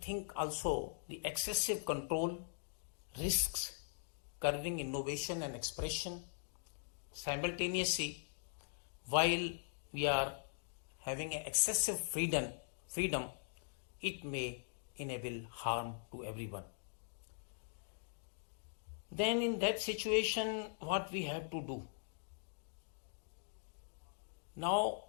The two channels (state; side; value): silent; right; digital silence